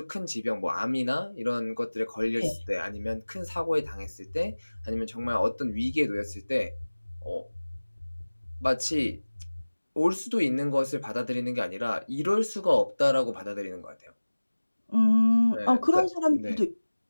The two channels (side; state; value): both; inverted; correlation -1.00